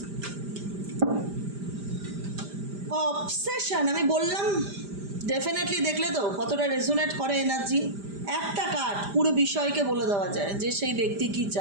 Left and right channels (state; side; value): late; left; 5.0 ms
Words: Obsession, আমি বললাম definitely, দেখলে তো কতটা রেজোনেট করে এনার্জি। একটা কার্ড পুরো বিষয়কে বলে দেওয়া যায় যে সেই ব্যক্তি কি